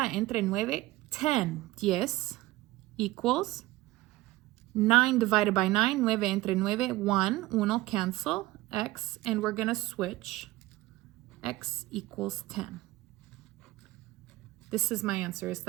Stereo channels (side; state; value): left; quieter; 18.3 dB